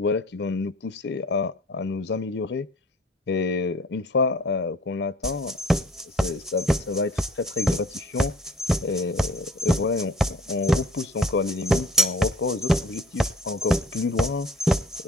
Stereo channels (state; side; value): normal; both; correlation 0.51